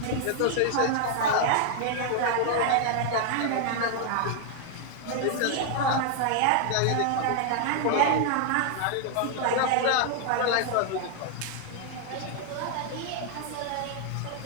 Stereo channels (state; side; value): different; both; correlation 0.00